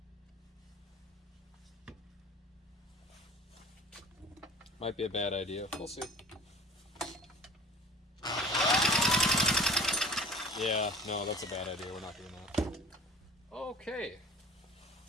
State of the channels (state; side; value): normal; both; correlation 0.42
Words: Might be a bad idea. We'll see. Yeah, no, that's a bad idea. We're not doing that. Okay.